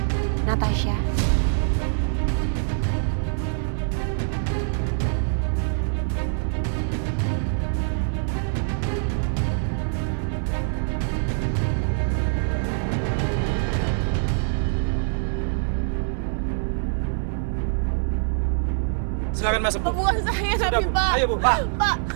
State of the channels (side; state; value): left; silent; 57 dB below the other